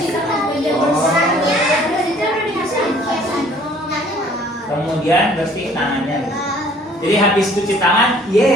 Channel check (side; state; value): both; normal; correlation 0.56